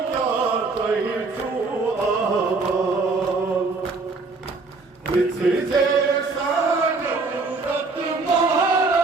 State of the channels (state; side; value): quieter; left; 3.9 dB